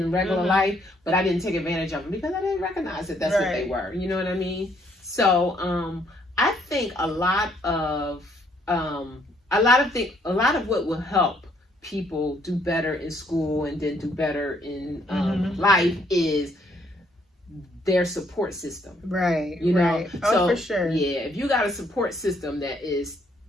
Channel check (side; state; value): both; normal; correlation 0.68